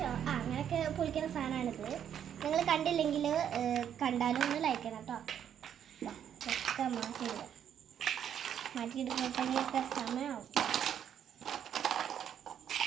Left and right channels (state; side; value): quieter; left; 9.2 dB